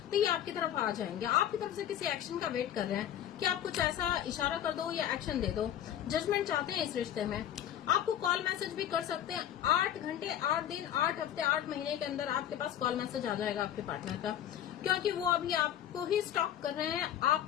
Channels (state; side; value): quieter; right; 10.7 dB